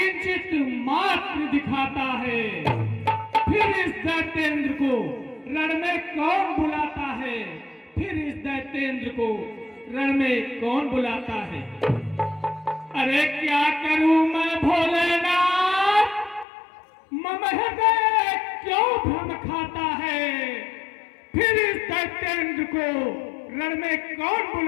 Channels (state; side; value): drops out; right; at 16.4 s